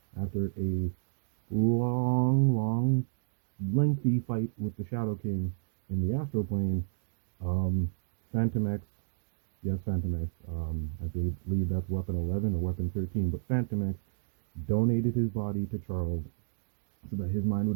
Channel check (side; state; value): left; silent; digital silence